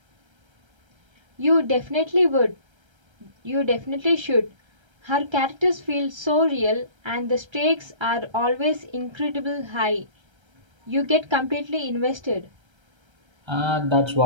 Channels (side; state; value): left; late; 1.3 ms